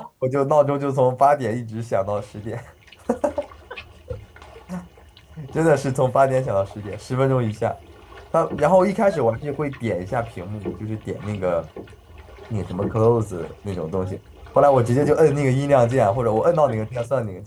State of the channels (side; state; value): both; identical; correlation 1.00